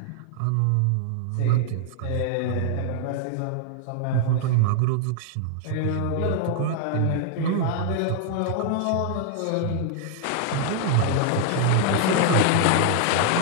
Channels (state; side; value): different; both; correlation 0.00